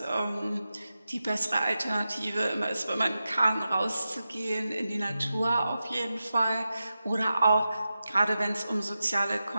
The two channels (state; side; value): inverted; both; correlation -0.92